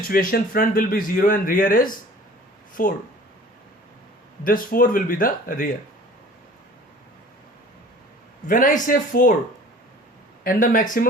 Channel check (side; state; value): both; normal; correlation 0.47